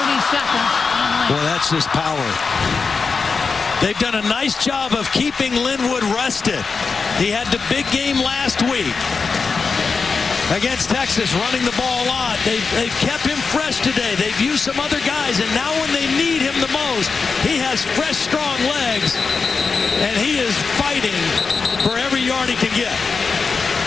seconds. Boy, that's just power. They've done a nice job of keeping Linwood rested. He had the big game last week against Texas, running the ball a lot. They've kept him fresh today. They've used some other guys, and now when they need him the most, he has fresh, strong legs, and he is fighting for every yard he can get.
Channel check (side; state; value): right; quieter; 4.8 dB